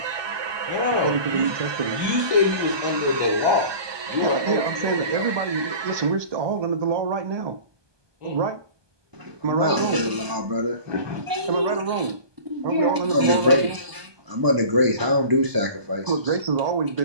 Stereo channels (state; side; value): late; left; 1.2 ms